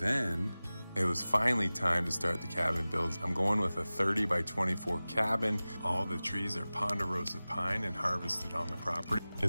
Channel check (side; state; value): both; inverted; correlation -0.98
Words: it was finally time to start the cabin builds. I'm going with a 30 by 24 cabin. All the trees are ponderosa pine and harvested on the property.